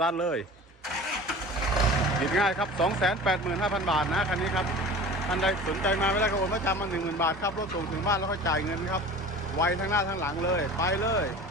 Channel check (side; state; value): both; normal; correlation 0.39